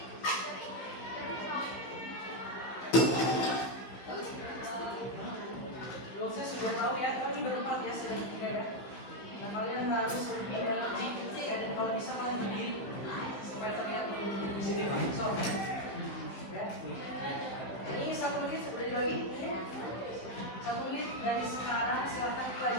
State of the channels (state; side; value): late; right; 15 ms